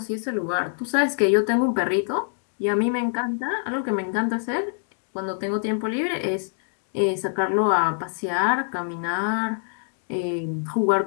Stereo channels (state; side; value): silent; right; digital silence